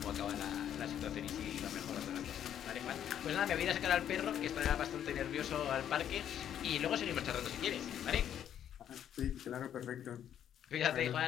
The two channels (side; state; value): right; quieter; 10.0 dB